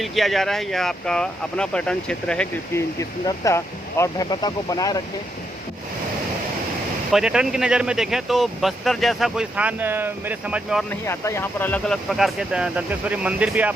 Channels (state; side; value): normal; both; correlation 0.79